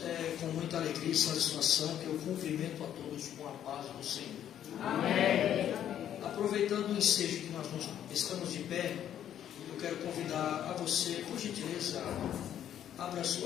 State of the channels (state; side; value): quieter; right; 10.4 dB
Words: é com muita alegria e satisfação que eu cumprimento a todos com a paz do Senhor. Amém. Aproveitando o ensejo que nós estamos de pé, eu quero convidar a você, por gentileza, abra a